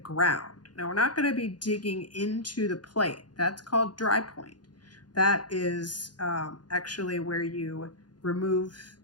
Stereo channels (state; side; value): late; right; 0.70 ms